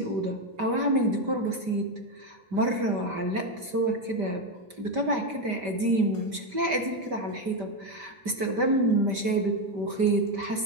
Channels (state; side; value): late; left; 5.1 ms